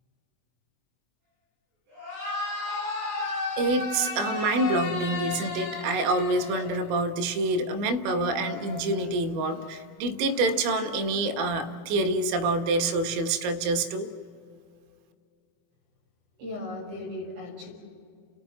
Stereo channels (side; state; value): left; late; 24 ms